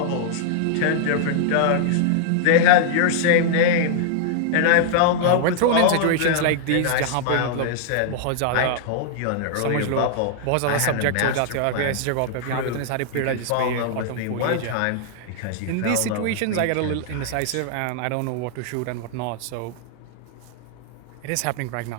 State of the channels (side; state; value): both; different; correlation -0.01